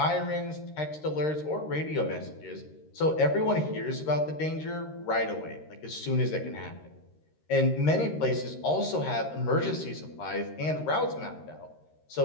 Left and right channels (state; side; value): late; right; 13 ms